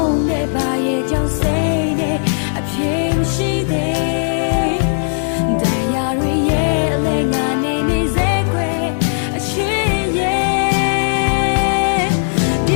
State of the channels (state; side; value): silent; right; digital silence